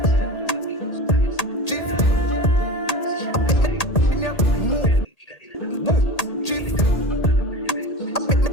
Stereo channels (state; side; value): late; right; 1.8 ms